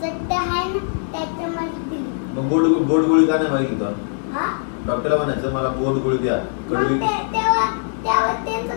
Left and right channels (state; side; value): silent; right; digital silence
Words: मग बोट गोळी का नाही मागितलं? डॉक्टरला म्हणायचं मला बोट गोळी द्या, कडवी.